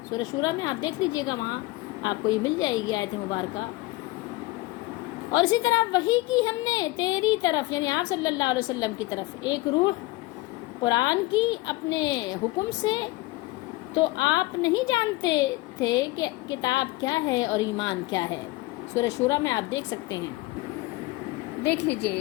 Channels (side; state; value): right; quieter; 20.5 dB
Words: سورہ شورى میں آپ دیکھ لیجئے گا، وہاں آپ کو یہ مل جائے گی آیت مبارکہ. اور اسی طرح وحی کی ہم نے تیری طرف یعنی آپ صلی اللہ علیہ وسلم کی طرف ایک روح قرآن کی اپنے حکم سے، تو آپ نہیں جانتے تھے کہ کتاب کیا ہے اور ایمان کیا ہے. سورہ شورى میں آپ دیکھ سکتے ہیں، دیکھ